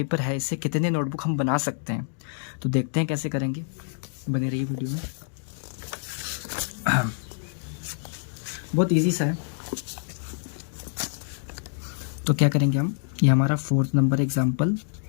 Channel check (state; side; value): silent; right; digital silence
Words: है इससे कितने नोटबुक हम बना सकते हैं। तो देखते हैं कैसे करेंगे, बने रहिए वीडियो में। बहुत इजी सा है। तो क्या करेंगे हम, ये हमारा 4th नंबर एग्जाम्पल।